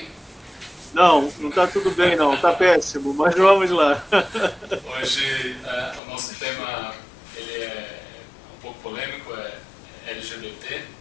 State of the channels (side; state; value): right; drops out; at 6.0 s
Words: Não, não está tudo bem não, está péssimo, mas vamos lá. Hoje o nosso tema ele é um pouco polêmico, é LGBT